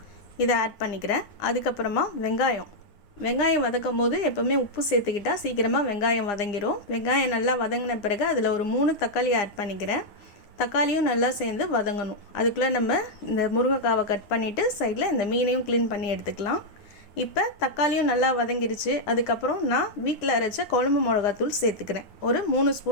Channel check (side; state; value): right; late; 9.8 ms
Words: இதை ஆட் பண்ணிக்கிறேன். அதுக்கப்புறமா வெங்காயம் வதக்கும் போது எப்போவுமே உப்பு சேர்த்துக்கிட்டால் சீக்கிரமாக வெங்காயம் வதங்கிடும். வெங்காயம் நல்லா வதங்கின பிறகு அதில் ஒரு 3 தக்காளி ஆட் பண்ணிக்கிறேன். தக்காளியும் நல்லா சேர்ந்து வதங்கணும். அதுக்குள்ளே நம்ம இந்த முருங்கைக்காவை கட் பண்ணிவிட்டு சைடில் இந்த மீனையும் க்ளீன் பண்ணி எடுத்துக்கலாம். இப்போ தக்காளியும் நல்லா வதங்கிருச்சு. அதுக்கப்புறம் நான் வீட்டில் அரைச்ச குழம்பு மிளகாத்தூள் சேர்த்துக்கிறேன். ஒரு 3